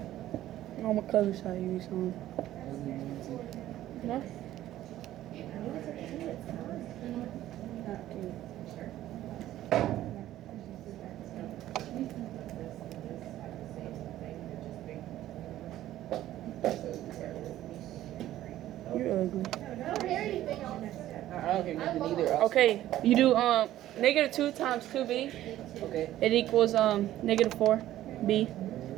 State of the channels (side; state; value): left; quieter; 13.6 dB